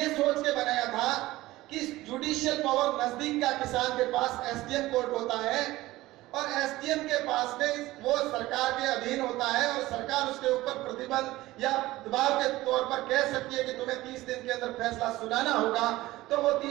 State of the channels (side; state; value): left; quieter; 17.6 dB